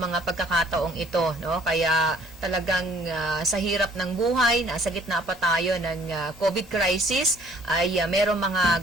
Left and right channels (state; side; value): normal; both; correlation 0.57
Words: mga pagkakataong ito, no? Kaya talagang sa hirap ng buhay, nasa gitna pa tayo ng COVID crisis, ay merong mga